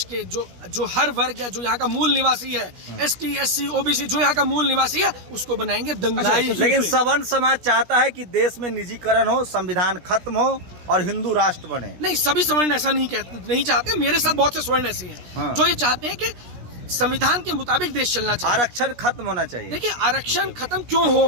के जो हर वर्ग या जो यहाँ का मूल निवासी है, ST, SC, OBC, जो यहाँ का मूल निवासी है, उसको बनाएंगे दंगाई। लेकिन सवर्ण समाज चाहता है कि देश में निजीकरण हो, संविधान खत्म हो और हिंदू राष्ट्र बने। नहीं, सभी सवर्ण ऐसा नहीं चाहते। मेरे साथ बहुत से स्वर्ण ऐसे हैं जो ये चाहते हैं कि संविधान के मुताबिक देश चलना चाहिए। आरक्षण खत्म होना चाहिए। देखिए, आरक्षण खत्म क्यों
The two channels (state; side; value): late; left; 17 ms